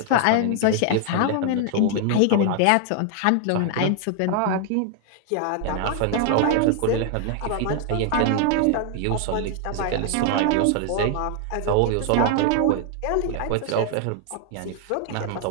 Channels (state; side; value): different; both; correlation 0.00